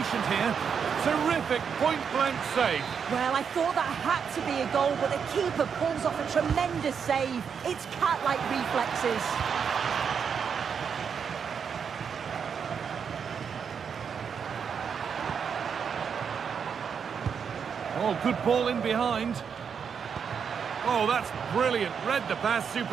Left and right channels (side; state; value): left; quieter; 6.8 dB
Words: here. Terrific point-blank save. Well, I thought that had to be a goal, but the keeper pulls off a tremendous save. It's cat-like reflexes. Oh, good ball in behind. Oh, that's brilliant. Read the pass